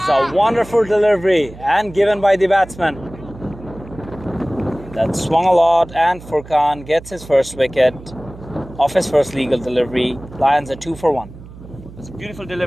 a wonderful delivery and given by the batsman. That swung a lot, and Furkan gets his first wicket off his first legal delivery. Lions are 2 for 1. It's a beautiful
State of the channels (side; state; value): right; noise; hum, 17 dB below the sound